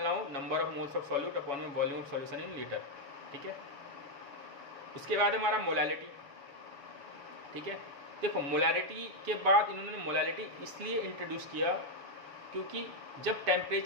हो, number of moles of solute upon में volume of solution in litre. ठीक है, उसके बाद हमारा मोलैलिटी। ठीक है, देखो मोलैरिटी के बाद इन्होंने मोलैलिटी इसलिए इंट्रोड्यूस किया क्योंकि जब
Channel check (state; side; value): late; left; 7.2 ms